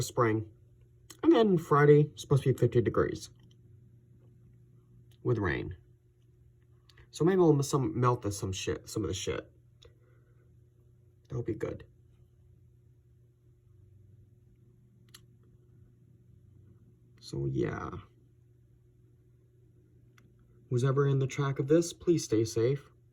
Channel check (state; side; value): identical; both; correlation 1.00